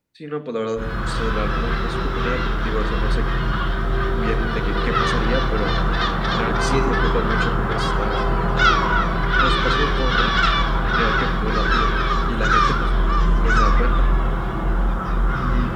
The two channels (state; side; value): identical; both; correlation 1.00